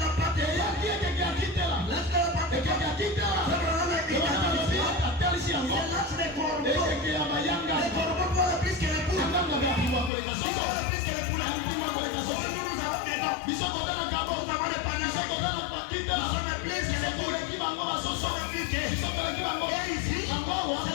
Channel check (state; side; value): drops out; right; at 10.1 s